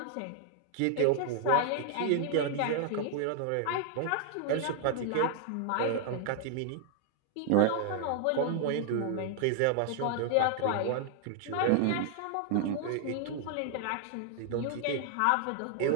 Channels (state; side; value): different; both; correlation 0.00